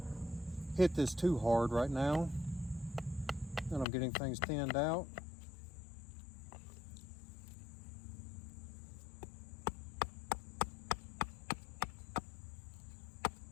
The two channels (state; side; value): drops out; right; at 3.9 s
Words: hit this too hard right now, and I'm getting things thinned out.